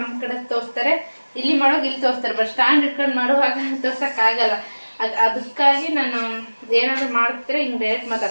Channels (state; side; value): inverted; both; correlation -1.00